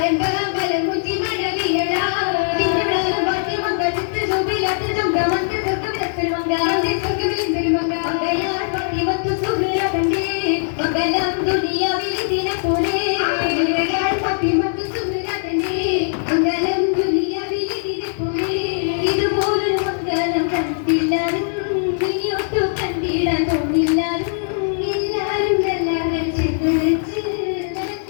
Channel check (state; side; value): silent; right; 66 dB below the other